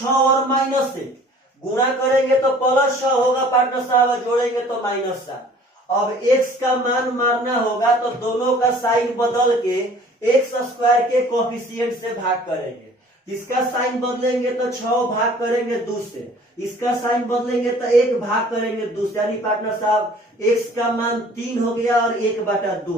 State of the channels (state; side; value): normal; both; correlation 0.51